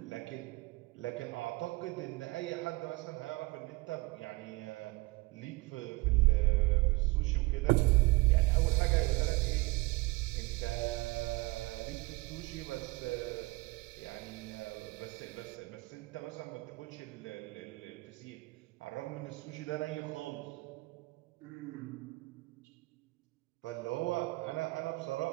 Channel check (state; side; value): quieter; left; 23.5 dB